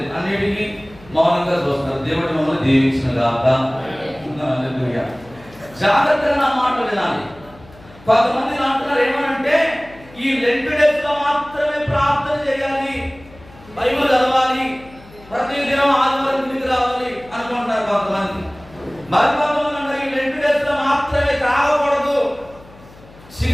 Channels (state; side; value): noise; left; hum, 23 dB below the sound